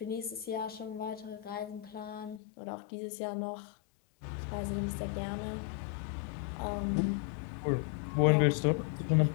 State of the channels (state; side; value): drops out; right; at 2.4 s